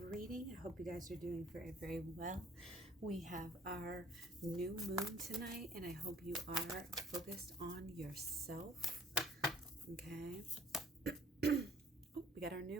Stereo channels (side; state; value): both; normal; correlation 0.56